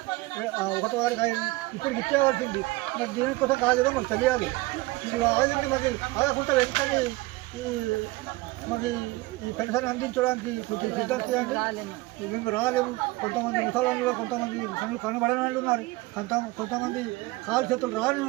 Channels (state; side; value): quieter; left; 21.1 dB